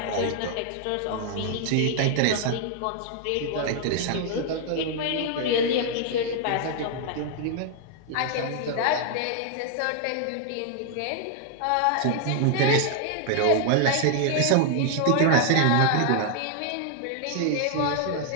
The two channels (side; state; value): both; different; correlation 0.00